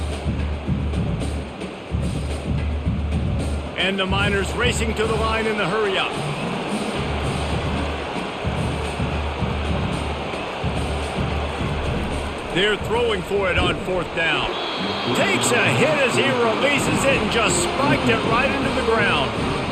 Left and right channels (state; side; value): identical; both; correlation 1.00